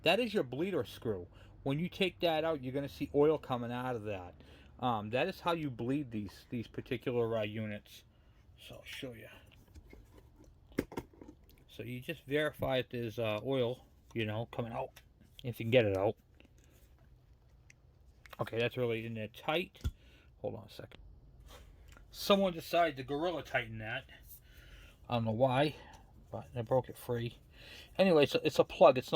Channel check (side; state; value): both; identical; correlation 1.00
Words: that is your bleeder screw. When you take that out, you're going to see oil coming out of that. That is how you bleed these particular units. So I'll show you. So you just verify that there's oil, you know, coming out, if you can get it out. Okay, that's really in there tight. Hold on a second. Someone decided to Gorilla Tighten that. I don't know why, but I broke it free. Anyway, so it's a plug. It's